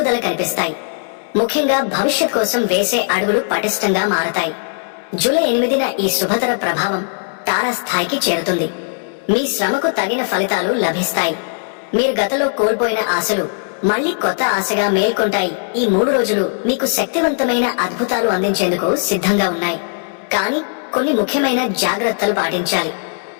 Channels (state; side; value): silent; right; digital silence